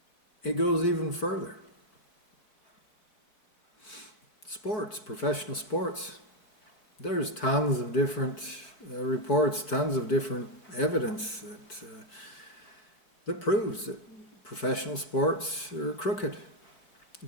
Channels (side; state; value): right; late; 4.4 ms